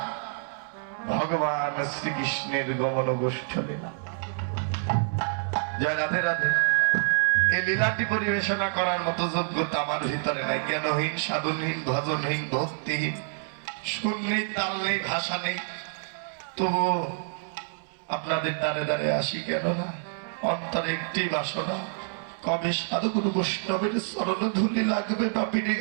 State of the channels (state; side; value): silent; left; 59 dB below the other